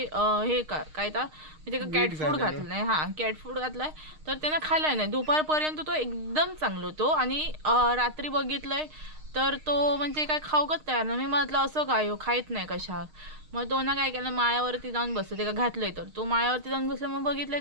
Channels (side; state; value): left; late; 6.5 ms